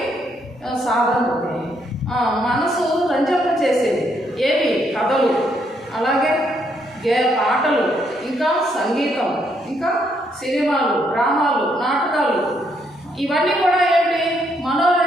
సాధన అవుతాయి. మనసు రంజన చేసేది ఏవి? కథలు, అలాగే పాటలు, ఇంకా సంగీతం, ఇంకా సినిమాలు, డ్రామాలు, నాటకాలు, ఇవన్నీ కూడా ఏంటి?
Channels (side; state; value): both; normal; correlation 0.73